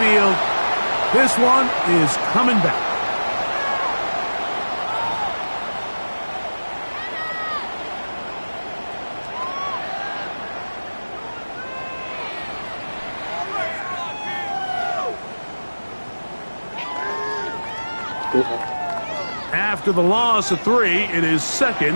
This one is coming back. After the loss of 3, it is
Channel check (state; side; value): inverted; both; correlation -1.00